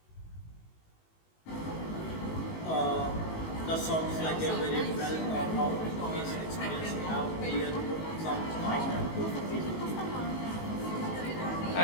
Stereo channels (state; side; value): late; right; 19 ms